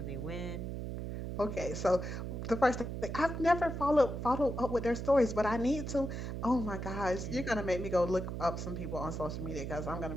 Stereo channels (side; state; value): right; noise; hum, 5 dB below the sound